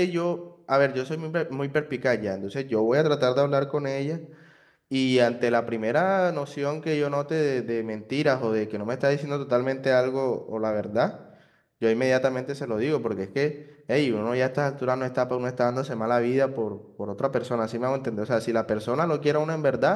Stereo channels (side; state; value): both; identical; correlation 1.00